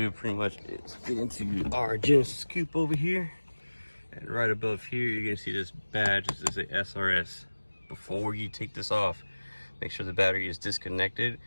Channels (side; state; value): both; inverted; correlation -1.00